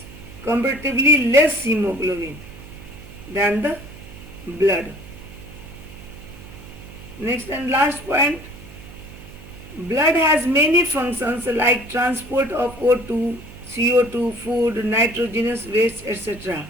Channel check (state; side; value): noise; right; hum, 17 dB below the sound